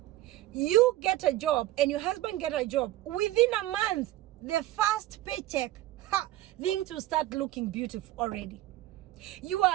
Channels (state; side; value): quieter; left; 15.7 dB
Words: you get a job and your husband get a job, within a month, the first paycheck, things will start looking beautiful already. You